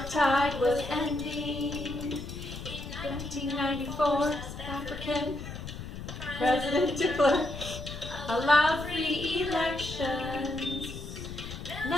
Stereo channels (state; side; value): noise; left; rumble, 9 dB below the sound